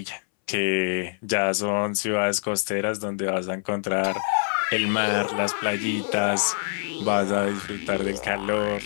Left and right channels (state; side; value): silent; right; 62 dB below the other